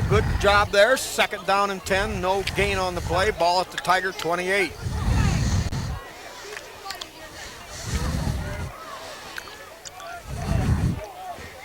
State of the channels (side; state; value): both; identical; correlation 1.00